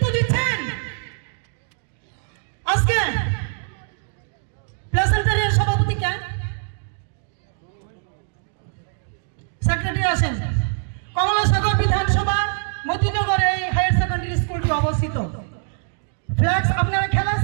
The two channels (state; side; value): silent; left; 61 dB below the other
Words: দিচ্ছেন। আজকে প্লেসেন্টারের সভাপতি কে? সেক্রেটারি আসেন। কমলাসাগর বিধানসভা মতিনগর এই হায়ার সেকেন্ডারি স্কুলটি অবস্থিত। ফ্ল্যাক্স আপনারা খেলা